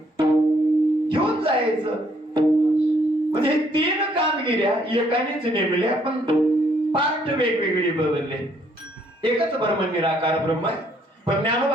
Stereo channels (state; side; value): normal; both; correlation 0.67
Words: घेऊन जायचं. म्हणजे हे 3 कामगिऱ्या एकानेच नेमल्या, पण पार्ट वेगवेगळी बदलले. एकच ब्रह्म निराकार ब्रह्म आहे. पण